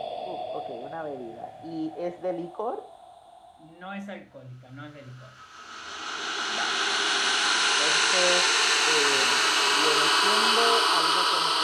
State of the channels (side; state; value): both; identical; correlation 1.00